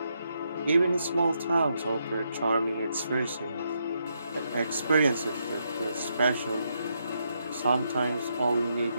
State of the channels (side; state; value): both; inverted; correlation -0.79